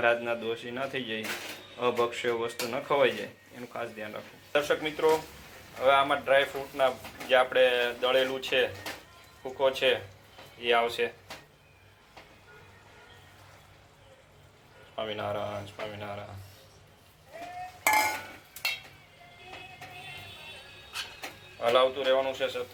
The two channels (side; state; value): both; identical; correlation 1.00